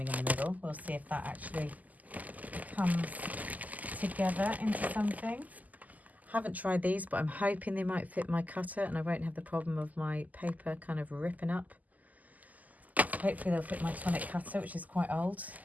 in the middle. We'll see if that actually comes together into something. Haven't tried these, but I'm hoping they might fit my cutter and I won't have the problem of my paper kind of ripping up. So hopefully they'll fit my tonic cutter, which is quite old.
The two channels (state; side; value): late; left; 0.079 ms